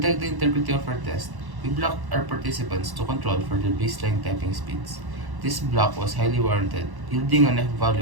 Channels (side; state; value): left; late; 1.1 ms